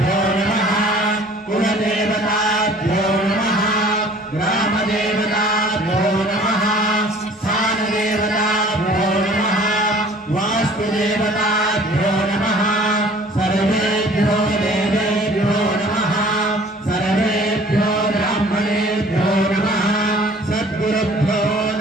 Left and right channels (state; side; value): normal; both; correlation 0.51